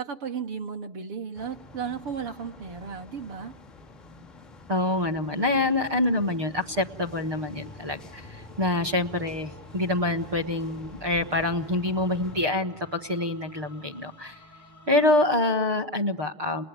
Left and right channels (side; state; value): left; late; 6.6 ms